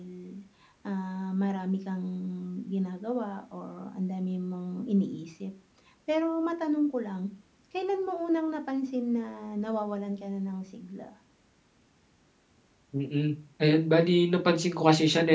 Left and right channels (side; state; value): both; identical; correlation 1.00